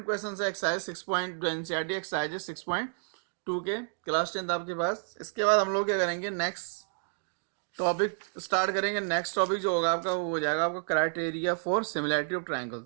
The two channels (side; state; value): left; silent; digital silence